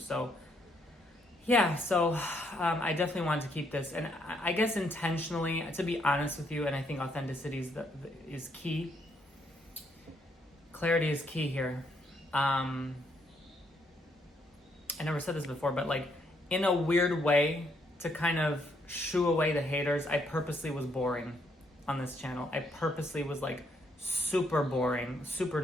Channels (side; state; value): both; normal; correlation 0.73